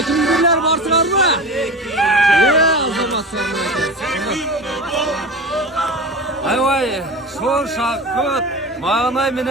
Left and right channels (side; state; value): both; normal; correlation 0.30